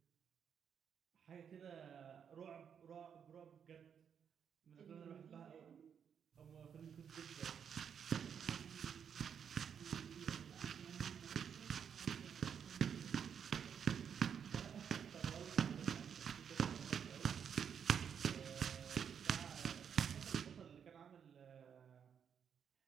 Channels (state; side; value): quieter; left; 7.7 dB